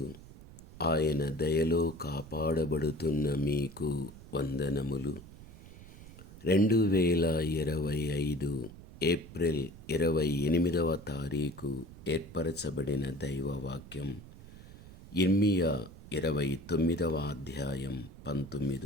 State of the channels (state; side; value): noise; right; rumble, 17 dB below the sound